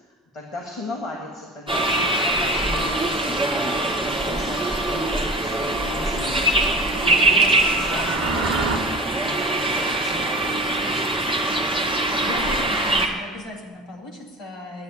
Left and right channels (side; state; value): both; normal; correlation 0.34